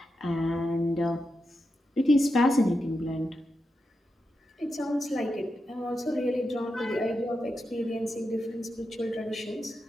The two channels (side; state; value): both; normal; correlation 0.88